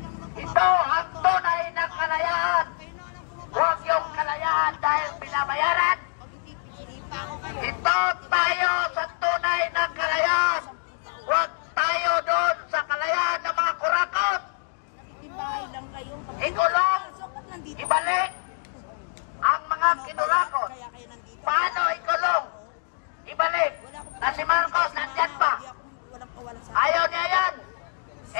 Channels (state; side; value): silent; right; digital silence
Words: ito ang tunay na kalayaan. Huwag yung kalayaan dahil binabayaran. Ito tayo sa tunay na kalayaan. Huwag tayo doon sa kalayaan ng mga kurakot. Ikulong, ibalik ang mga kinurakot. Paano ikulong? Ibalik. Na si Marcos nandyan pa. Ayaw niya yan.